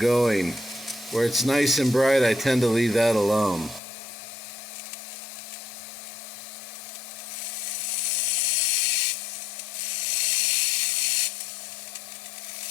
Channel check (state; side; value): drops out; right; at 3.8 s